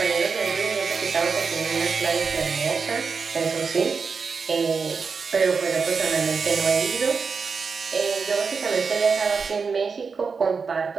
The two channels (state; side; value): quieter; left; 5.2 dB